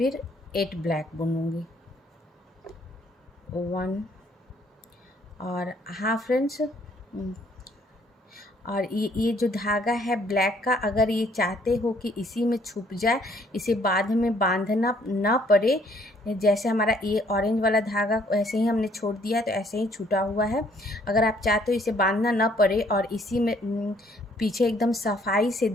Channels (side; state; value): both; normal; correlation 0.64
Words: 8 ब्लैक बुनूंगी, 1। और हाँ फ्रेंड्स, और ये जो धागा है ब्लैक का, अगर ये चाहते हो कि इसी में छुप जाए, इसे बाद में बांधना ना पड़े, जैसे हमारा ये ऑरेंज वाला धागा ऐसे ही हमने छोड़ दिया तो ऐसे ही छूटा हुआ है। अगर आप चाहते हो इसे बांधना ना पड़े और इसी में पीछे एकदम सफाई से